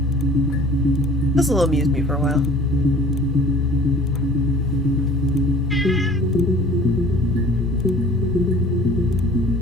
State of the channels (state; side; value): normal; both; correlation 0.48